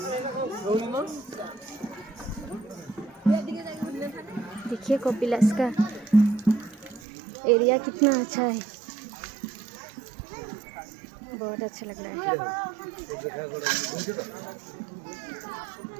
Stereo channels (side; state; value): left; drops out; at 7.0 s